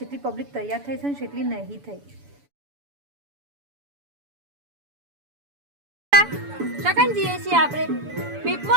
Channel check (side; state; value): left; late; 7.0 ms